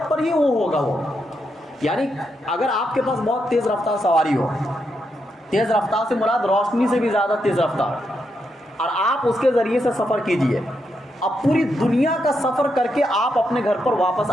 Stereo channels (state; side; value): normal; both; correlation 0.82